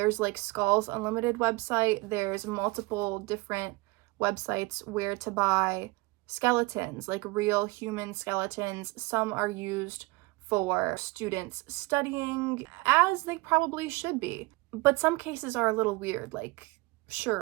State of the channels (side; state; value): left; quieter; 24.1 dB